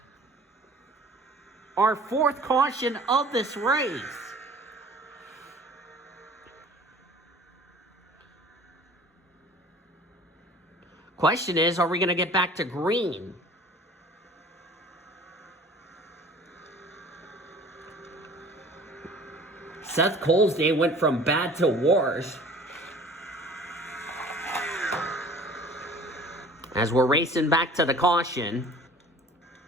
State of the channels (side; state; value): both; normal; correlation 0.47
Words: Our 4th caution of this race. Question is, are we going to get back to green? Seth Cole's day went from bad to worse. As we're racing back to the caution.